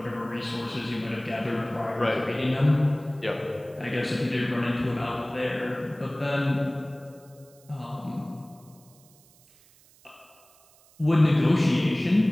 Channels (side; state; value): right; noise; hiss, 28 dB below the sound